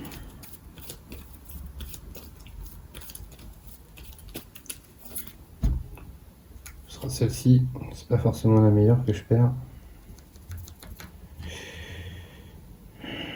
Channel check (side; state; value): both; identical; correlation 1.00